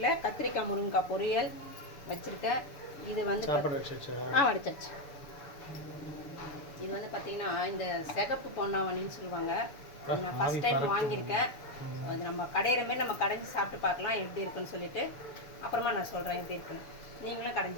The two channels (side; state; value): right; late; 6.9 ms